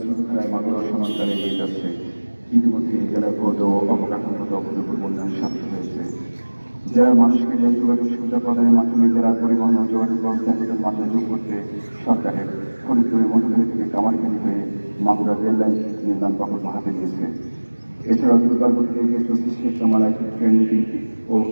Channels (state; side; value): inverted; both; correlation -1.00